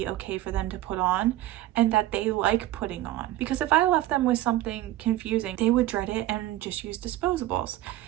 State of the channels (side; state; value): left; quieter; 15.0 dB